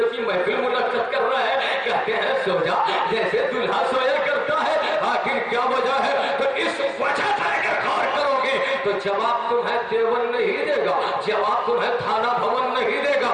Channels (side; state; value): both; identical; correlation 1.00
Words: کی محفل منعقد کر رہا ہے. کہتے ہیں سو جا جیسے دلہا سویا کرتا ہے. آخر کیا وجہ ہے؟ تو اس وجہ سے اگر غور کرو گے تو جواب تمہیں دیوبند نہیں دے گا، جواب تمہیں تھانہ بھون نہیں دے گا،